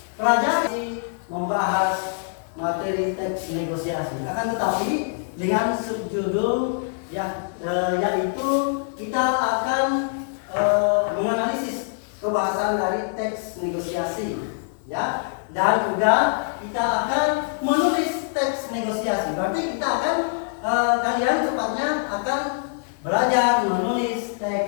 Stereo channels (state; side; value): silent; right; digital silence